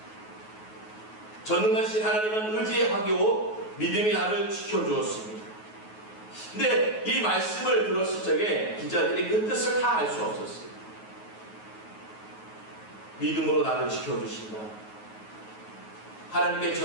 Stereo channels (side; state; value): right; late; 9.4 ms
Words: 전능하신 하나님은 의지하고 믿음이 나를 지켜주었습니다. 근데 이 말씀을 들었을 적에 기자들이 그 뜻을 다 알 수 없었어요. 믿음으로 나를 지켜주신다. 하나님께